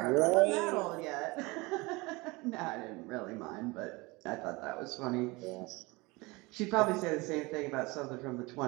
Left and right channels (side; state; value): left; quieter; 24.2 dB